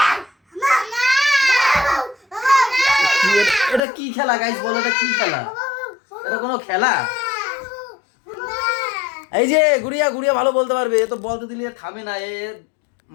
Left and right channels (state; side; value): drops out; right; at 3.8 s